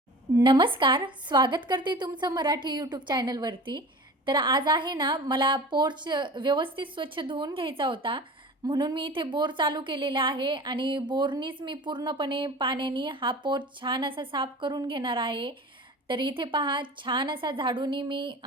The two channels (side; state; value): both; normal; correlation 0.38